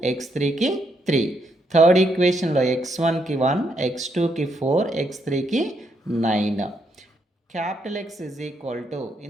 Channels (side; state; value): both; normal; correlation 0.77